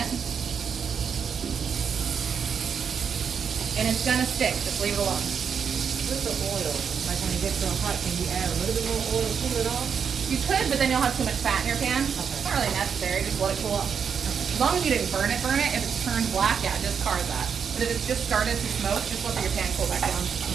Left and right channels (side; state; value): left; quieter; 6.9 dB